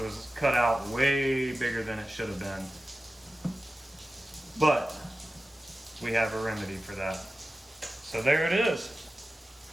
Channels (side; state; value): both; normal; correlation 0.95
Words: cut out way bigger than it should have been, but we have a remedy for that. So there it is.